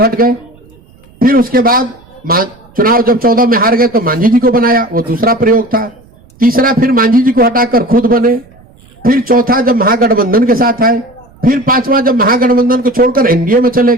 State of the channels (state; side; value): noise; right; rumble, 28 dB below the sound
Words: हट गए, फिर उसके बाद चुनाव जब 14 में हार गए तो मांझी जी को बनाया, वो दूसरा प्रयोग था। तीसरा फिर मांझी जी को हटाकर खुद बने, फिर चौथा जब महागठबंधन के साथ आए, फिर 5वां जब महागठबंधन को छोड़कर एनडीए में चले